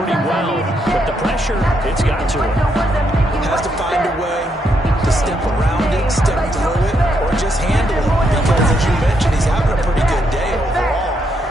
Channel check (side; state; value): both; normal; correlation 0.77